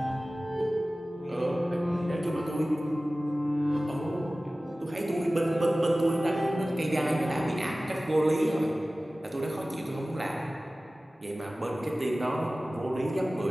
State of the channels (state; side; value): normal; both; correlation 0.97